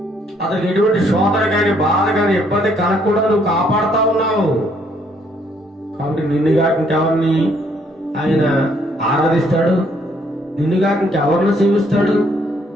అతనికి ఎటువంటి శోధన కానీ, బాధ కానీ, ఇబ్బంది కలగకుండా నువ్వు కాపాడుతా ఉన్నావు. కాబట్టి నిన్నుగా ఇంకెవరిని ఆయన ఆరాధిస్తాడు? నిన్నుగా ఇంకెవరిని సేవిస్తాడు?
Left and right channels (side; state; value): both; normal; correlation 0.68